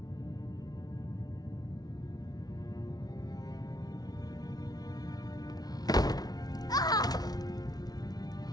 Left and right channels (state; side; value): late; right; 0.19 ms